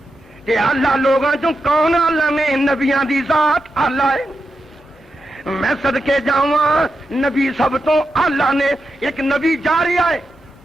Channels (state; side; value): normal; both; correlation 0.88